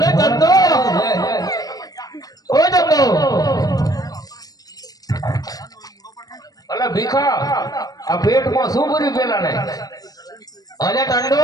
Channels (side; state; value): right; late; 0.18 ms